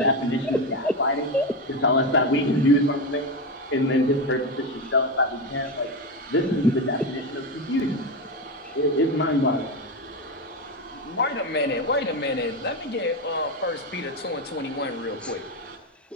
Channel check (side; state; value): both; normal; correlation 0.14